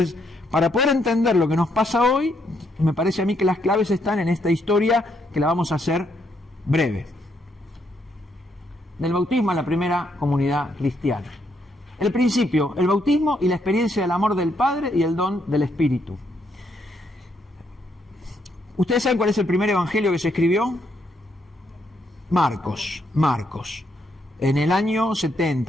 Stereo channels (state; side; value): normal; both; correlation 0.75